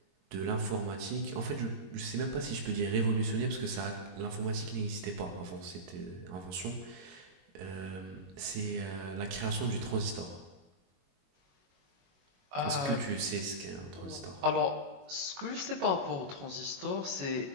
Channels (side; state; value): left; late; 22 ms